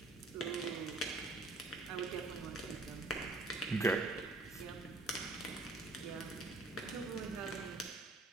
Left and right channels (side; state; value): left; quieter; 3.1 dB